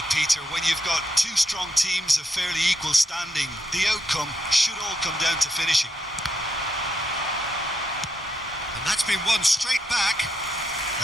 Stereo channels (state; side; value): normal; both; correlation 0.80